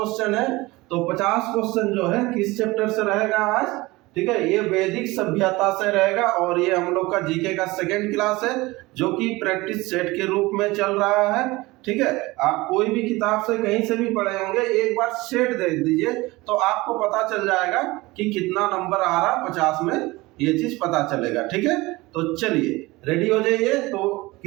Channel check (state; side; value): quieter; left; 21.2 dB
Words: है, तो 50 क्वेश्चन जो है किस चैप्टर से रहेगा आज, ठीक है। ये वैदिक सभ्यता से रहेगा और ये हम लोग का जीके का सेकंड क्लास है, जो कि प्रैक्टिस सेट के रूप में चल रहा है, ठीक है। आप कोई भी किताब से कहीं से भी पढ़े होंगे, एक बार सेट देख दीजिए तो आपको पता चल जाएगा कि कितना नंबर आ रहा 50 में, ये चीज पता चलेगा, ठीक है। तो चलिए रेडी हो जाइए, तो